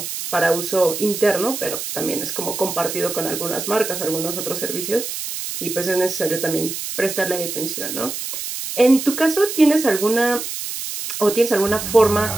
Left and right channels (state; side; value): noise; right; hiss, 6 dB below the sound